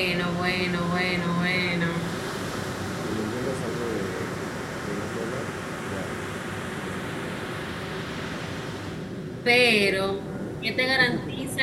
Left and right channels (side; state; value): both; identical; correlation 1.00